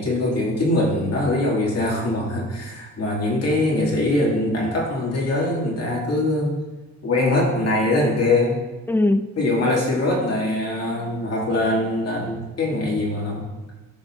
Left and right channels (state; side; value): normal; both; correlation 0.42